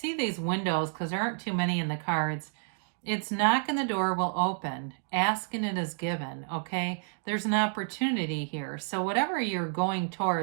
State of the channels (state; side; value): silent; left; 58 dB below the other